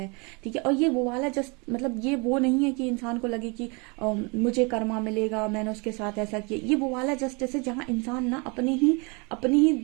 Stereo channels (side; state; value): left; quieter; 30.5 dB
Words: ठीक है। और ये वो वाला जस्ट मतलब ये वो नहीं है कि इंसान को लगे कि मुझे कर्मा मिलेगा, मैंने उसके साथ ऐसा किया। ये वो वाला जस्टिस है जहाँ इंसान ना अपनी ही